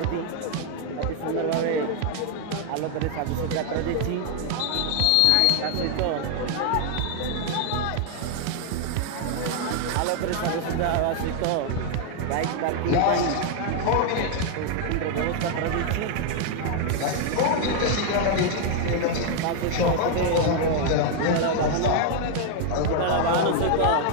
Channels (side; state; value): both; different; correlation 0.00